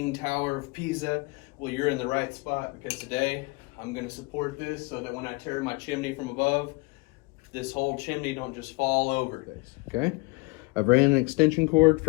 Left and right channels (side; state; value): right; quieter; 27.2 dB